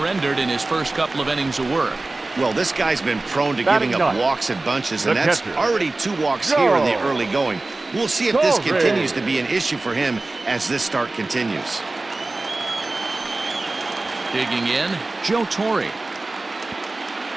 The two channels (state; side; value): quieter; left; 3.1 dB